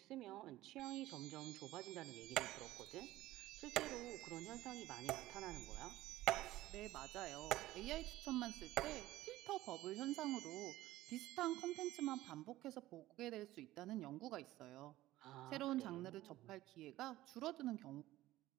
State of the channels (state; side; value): quieter; left; 15.9 dB